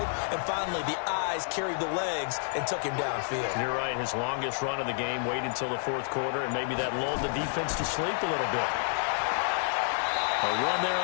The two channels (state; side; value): silent; right; 55 dB below the other